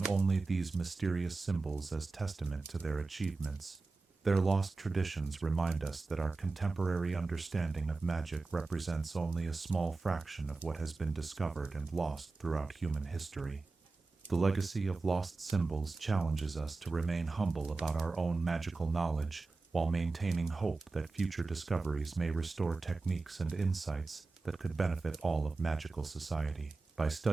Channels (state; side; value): quieter; left; 3.8 dB